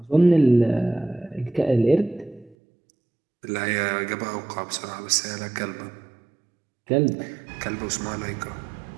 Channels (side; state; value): left; drops out; at 2.6 s